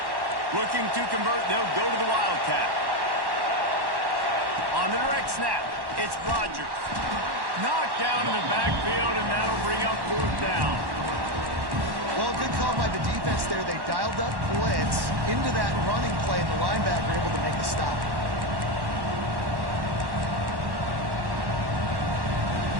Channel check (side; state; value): left; late; 1.1 ms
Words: Looking to convert, they'll go to the Wildcat. On the direct snap, it's Rodgers. Knocked down in the backfield, and that'll bring up 4th down. Well, good call by the defense there. They dialed up blitz into that running play, and the linebacker able to make the stop.